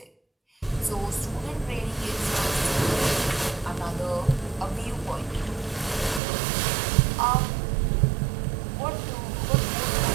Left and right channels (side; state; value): left; drops out; at 6.2 s